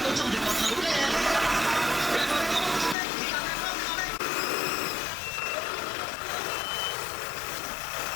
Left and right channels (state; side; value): drops out; right; at 3.0 s